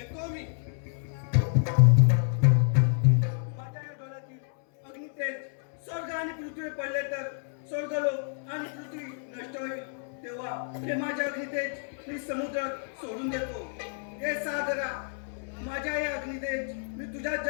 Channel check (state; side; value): silent; right; 58 dB below the other